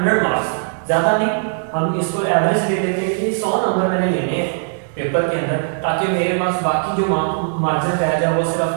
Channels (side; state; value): left; silent; digital silence